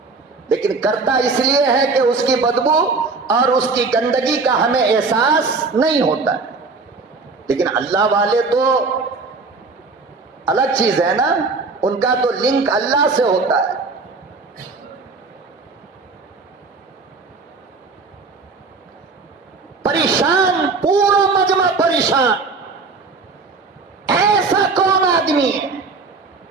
لیکن کرتا اس لیے ہے کہ اس کی بدبو اور اس کی گندگی کا ہمیں احساس نہیں ہوتا ہے. لیکن اللہ والے تو الگ چیز ہے نا، ان کا تو لنک اللہ سے ہوتا ہے. پریشان، پورا مجمع پریشان. ایسا کون آدمی ہے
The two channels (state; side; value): quieter; left; 4.2 dB